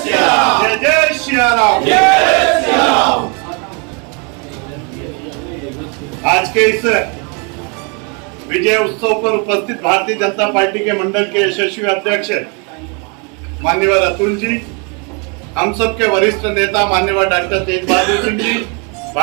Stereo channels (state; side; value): quieter; left; 34.5 dB